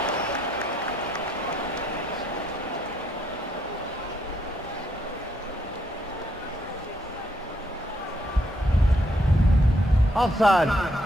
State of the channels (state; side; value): normal; both; correlation 0.74